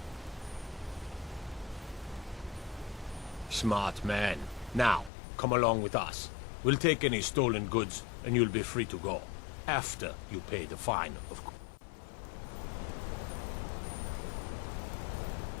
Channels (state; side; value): drops out; right; at 5.1 s